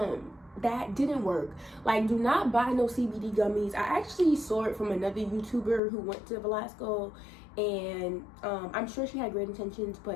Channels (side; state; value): right; drops out; at 5.8 s